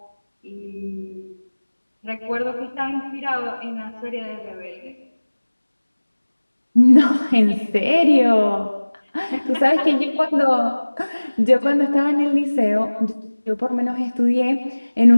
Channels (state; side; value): inverted; both; correlation -1.00